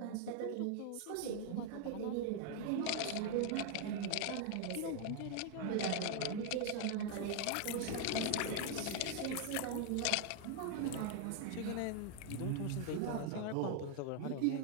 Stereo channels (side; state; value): both; different; correlation 0.00